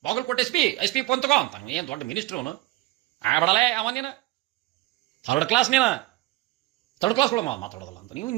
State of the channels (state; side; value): quieter; left; 18.2 dB